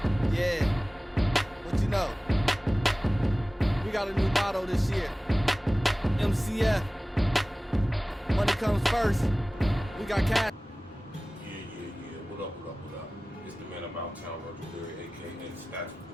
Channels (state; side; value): normal; both; correlation 0.97